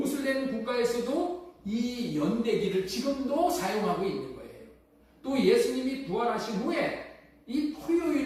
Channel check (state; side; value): identical; both; correlation 1.00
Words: 국가에서도 이 연대기를 지금도 사용하고 있는 거예요. 또 예수님이 부활하신 후에 이